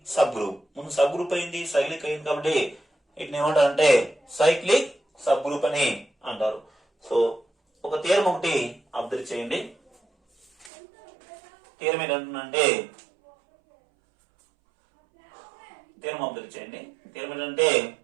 సబ్ గ్రూప్. ముందు సబ్ గ్రూప్ అయింది, సైక్లిక్ అయింది, కాబట్టి వీటిని ఏమంటారంటే సైక్లిక్ సబ్ గ్రూప్ అని అంటారు. సో ఒక థియరం ఒకటి అబ్జర్వ్ చేయండి. థియరం ఏంటంటే థీరం అబ్జర్వ్ చేయండి. థీరం ఏంటంటే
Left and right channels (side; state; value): left; drops out; at 10.7 s